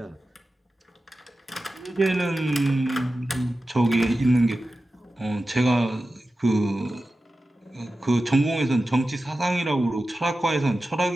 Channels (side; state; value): both; normal; correlation 0.94